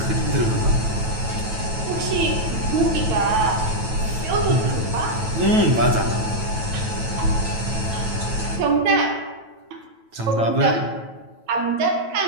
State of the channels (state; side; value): late; left; 9.1 ms